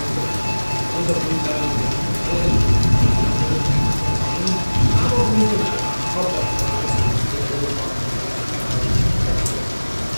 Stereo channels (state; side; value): inverted; both; correlation -1.00